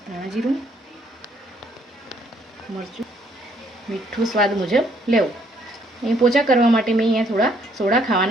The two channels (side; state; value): both; normal; correlation 0.67